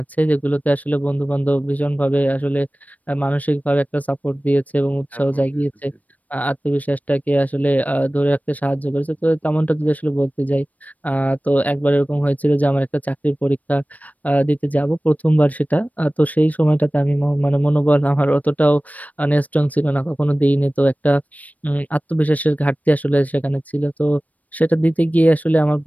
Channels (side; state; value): right; late; 0.073 ms